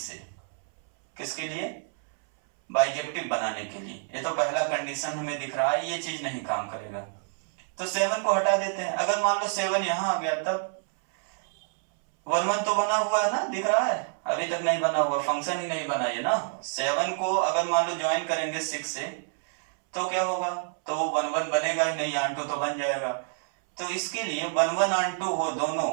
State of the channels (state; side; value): silent; left; 60 dB below the other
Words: किसके लिए, बाइजेक्टिव बनाने के लिए। ये तो पहला कंडीशन हमें दिख रहा है, ये चीज नहीं काम करेगा, तो 7 को हटा देते हैं। अगर मान लो 7 यहां आ गया, तब वन वन तो बना हुआ है ना, दिख रहा है, अभी तक नहीं बना हुआ, फंक्शन ही नहीं बना ये ना। 7 को अगर मान लो ज्वाइन करेंगे 6 से तो क्या होगा, तो वन वन बनेगा ही नहीं, ऑन टू तो बन जाएगा। तो इसके लिए वन वन ऑन टू हो दोनों,